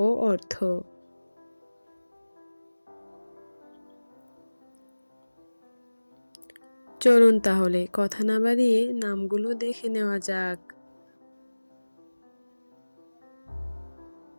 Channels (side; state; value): both; inverted; correlation -1.00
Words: ও অর্থ। চলুন তাহলে কথা না বাড়িয়ে নামগুলো দেখে নেওয়া যাক।